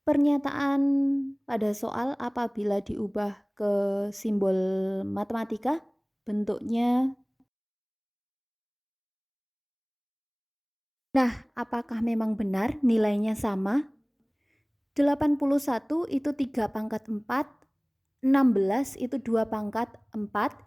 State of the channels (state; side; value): identical; both; correlation 1.00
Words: Pernyataan pada soal apabila diubah ke simbol matematika, bentuknya. Nah, apakah memang benar nilainya sama? 81 itu 3 pangkat 4, 16 itu 2 pangkat 4,